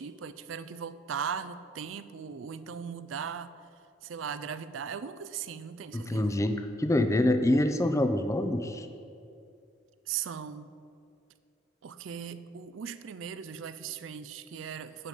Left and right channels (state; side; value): normal; both; correlation 0.71